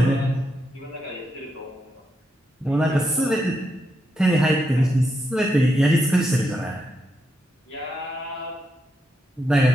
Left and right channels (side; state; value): both; normal; correlation 0.83